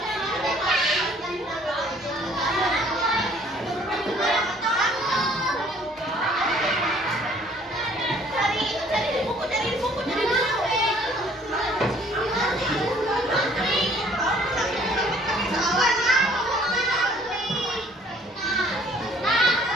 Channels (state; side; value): normal; both; correlation 0.58